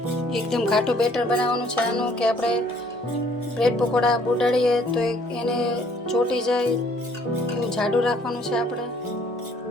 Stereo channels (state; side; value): normal; both; correlation 0.61